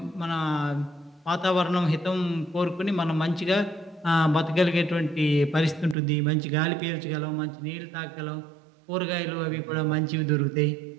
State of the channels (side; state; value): left; drops out; at 6.0 s